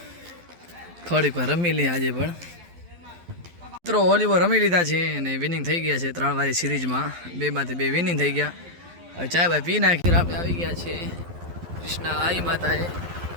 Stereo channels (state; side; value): late; left; 12 ms